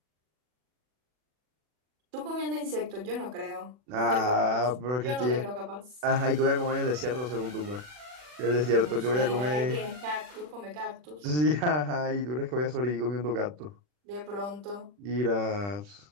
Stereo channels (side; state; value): left; late; 40 ms